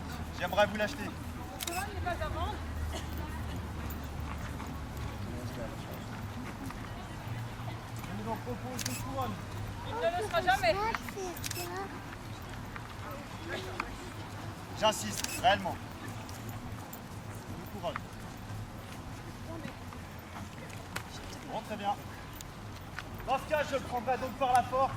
J'aimerais vous l'acheter. Je vous en propose une couronne. J'insiste, réellement. Une couronne. Bon, très bien. Dans ce cas, je le prendrai donc par la force.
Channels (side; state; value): both; identical; correlation 1.00